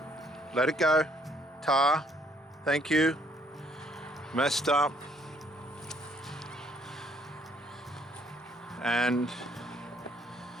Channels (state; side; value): normal; both; correlation 0.65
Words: Let it go. Tar, thank you. Messed up. and